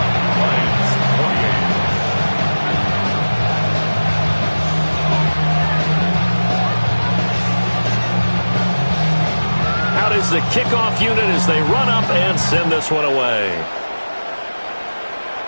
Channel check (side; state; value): both; inverted; correlation -1.00